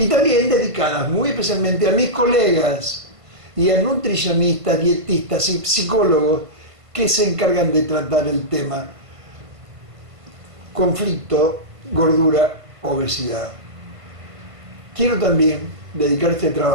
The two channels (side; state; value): left; late; 1.5 ms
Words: también dedicadas muy especialmente a mis colegas y a nutricionistas, dietistas y psicólogos que se encargan de tratar el tema conflicto, gordura, obesidad. Quiero también dedicar este